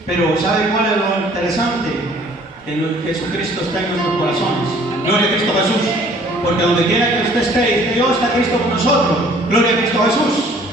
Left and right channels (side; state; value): both; normal; correlation 0.56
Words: Pero ¿sabe cuál es lo interesante? Que Jesucristo está en nuestros corazones. Gloria a Cristo Jesús. Porque donde quiera que usted esté, Dios está Cristo con nosotros. Gloria a Cristo Jesús.